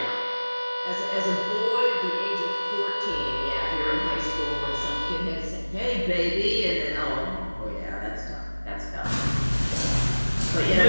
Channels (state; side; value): inverted; both; correlation -1.00